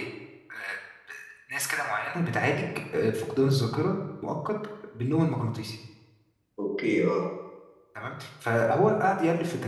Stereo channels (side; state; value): both; identical; correlation 1.00